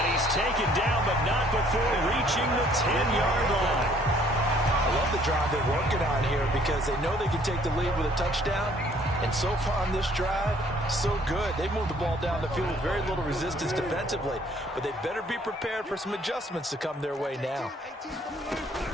he's taken down, but not before reaching the 10-yard line. I love the drive they're working on here because they know they can take the lead with a touchdown. And so far on this drive, so good. They moved the ball down the field with very little resistance defensively. But they better be prepared for some adjustments to come their way now.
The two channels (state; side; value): normal; both; correlation 0.61